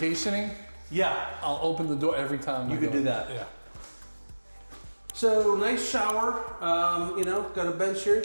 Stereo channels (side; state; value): both; inverted; correlation -1.00